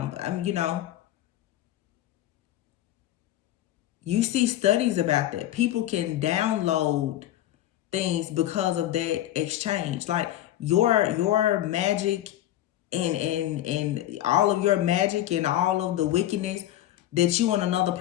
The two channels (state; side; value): quieter; right; 13.4 dB